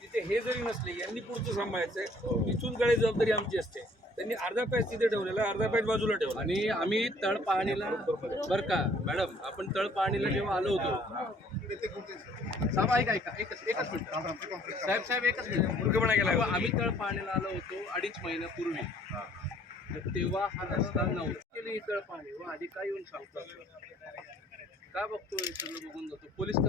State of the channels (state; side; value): normal; both; correlation 0.58